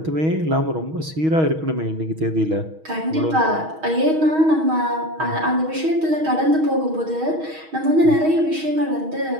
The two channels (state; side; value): late; left; 6.3 ms